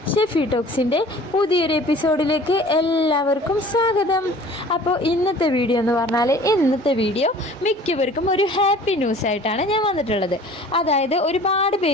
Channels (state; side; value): normal; both; correlation 0.47